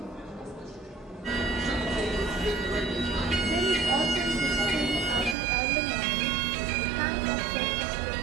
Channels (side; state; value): left; drops out; at 5.4 s